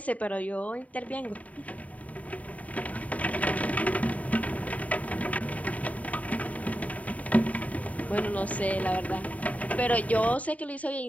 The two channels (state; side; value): late; right; 0.070 ms